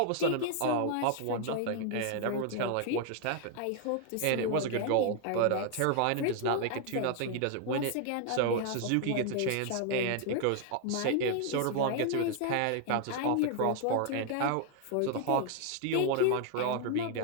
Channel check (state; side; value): different; both; correlation 0.00